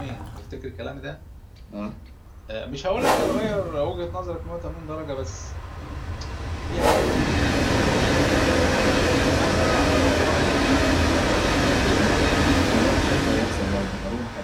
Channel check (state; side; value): identical; both; correlation 1.00